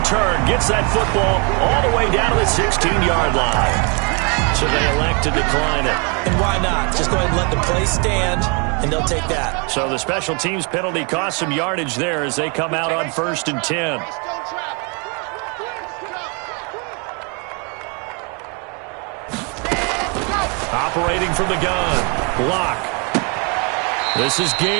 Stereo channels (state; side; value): quieter; left; 34.4 dB